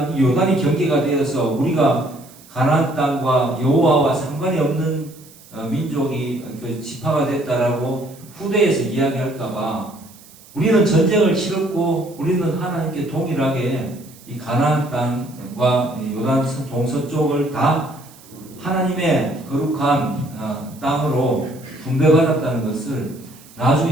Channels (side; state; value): right; noise; hiss, 23 dB below the sound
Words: 이 요단이 경계가 되어서 우리가 가나안 땅과 여호와와 상관이 없는 민족이 그 지파가 됐다라고 후대에서 이야기할까봐 우리는 전쟁을 치렀고 우리는 하나님께 동일하게 이 가나안 땅과 요단 동서쪽을 다 하나님의 거룩한 땅으로 분배받았다는 것을